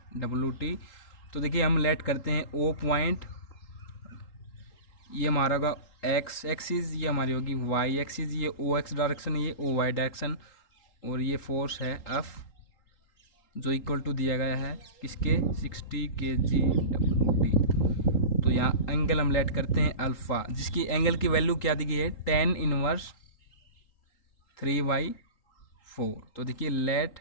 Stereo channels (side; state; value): right; late; 3.8 ms